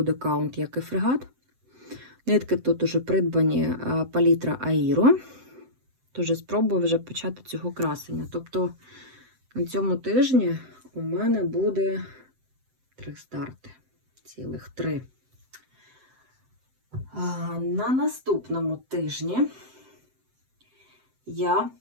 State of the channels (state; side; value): late; left; 7.8 ms